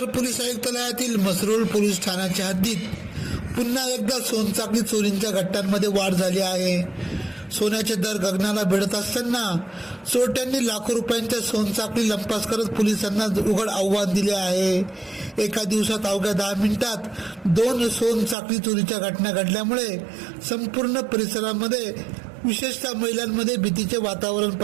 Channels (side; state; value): left; drops out; at 18.4 s